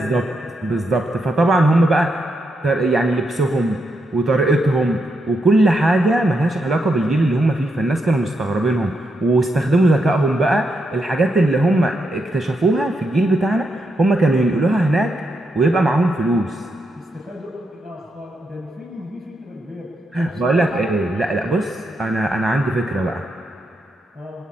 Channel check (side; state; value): both; normal; correlation 0.82